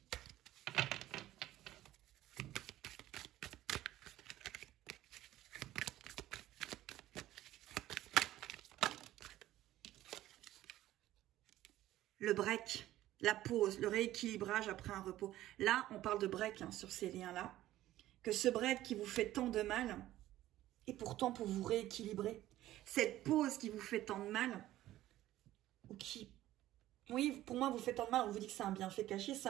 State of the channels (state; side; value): quieter; left; 14.5 dB